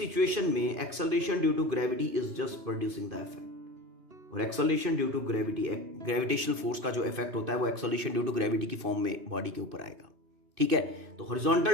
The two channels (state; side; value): late; left; 2.5 ms